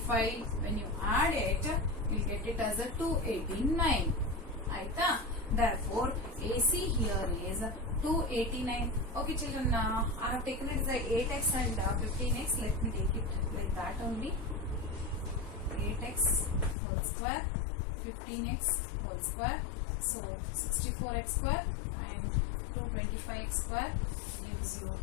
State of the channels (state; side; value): drops out; right; at 16.8 s